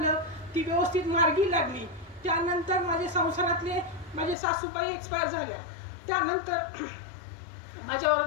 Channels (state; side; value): drops out; right; at 4.4 s